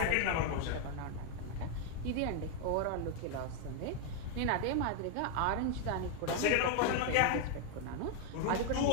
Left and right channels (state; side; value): different; both; correlation 0.00